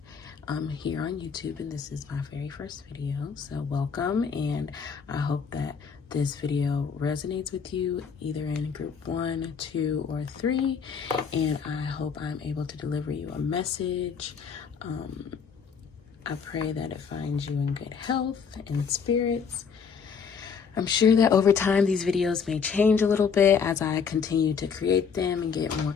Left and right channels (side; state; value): right; quieter; 6.2 dB